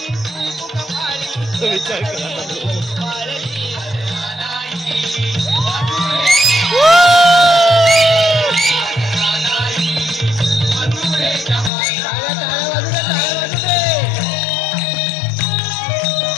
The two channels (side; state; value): right; drops out; at 11.7 s